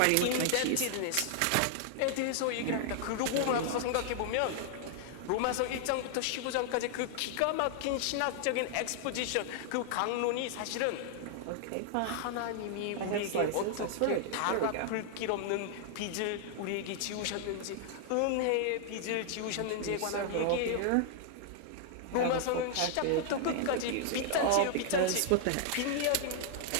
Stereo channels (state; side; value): different; both; correlation -0.01